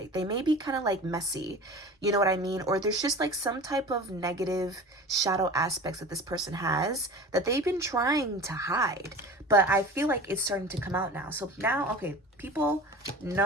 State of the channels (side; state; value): both; normal; correlation 0.36